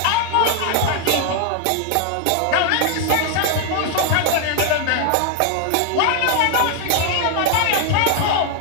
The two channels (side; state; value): both; different; correlation 0.00